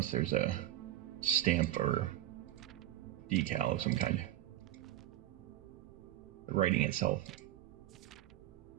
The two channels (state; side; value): quieter; left; 13.8 dB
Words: there's a stamp or decal of some kind. The writing itself.